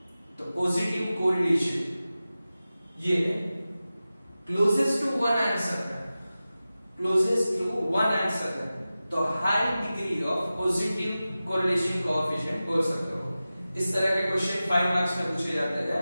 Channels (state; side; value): inverted; both; correlation -0.95